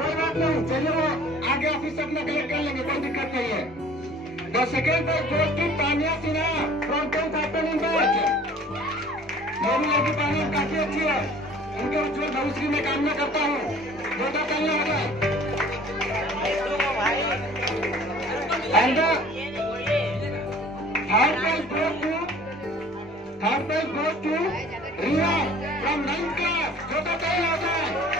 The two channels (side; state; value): both; normal; correlation 0.50